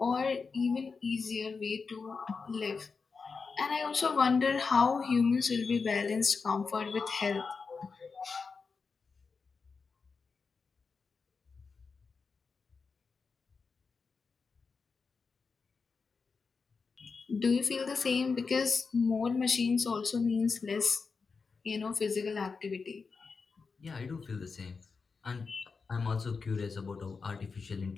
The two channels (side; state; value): right; quieter; 4.9 dB